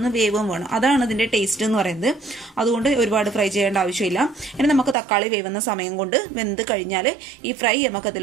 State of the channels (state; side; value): drops out; left; at 5.0 s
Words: വേവും വേണം. അതാണ് ഇതിൻ്റെ ടേസ്റ്റ് എന്ന് പറയുന്നത്. അതുകൊണ്ട് ഒരുപാട് ഫ്രൈ ചെയ്യേണ്ട ആവശ്യമില്ല. ഇനി നമുക്ക് തക്കാളി വേവുന്ന സമയം കൊണ്ട് വെന്ത് കഴിഞ്ഞാൽ ഈ ഫ്രൈ നമുക്ക്